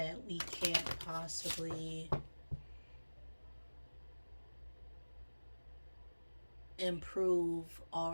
we can't possibly improve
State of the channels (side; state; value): both; inverted; correlation -1.00